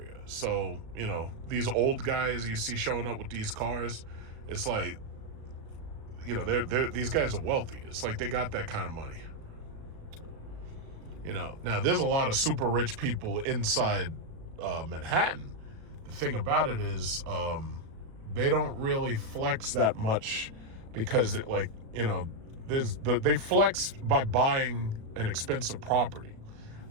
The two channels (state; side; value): late; left; 37 ms